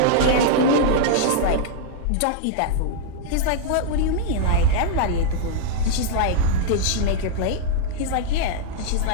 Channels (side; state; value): both; different; correlation -0.01